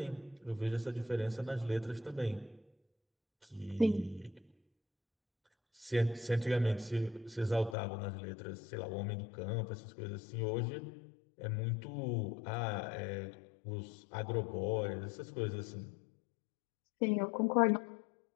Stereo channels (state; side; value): drops out; right; at 7.8 s